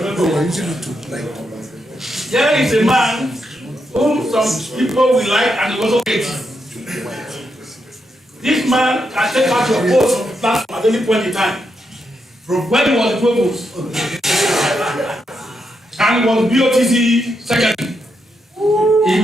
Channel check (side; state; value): both; normal; correlation 0.82